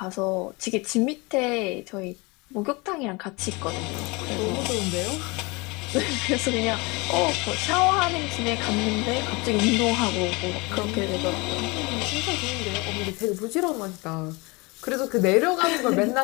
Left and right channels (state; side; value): quieter; right; 26.4 dB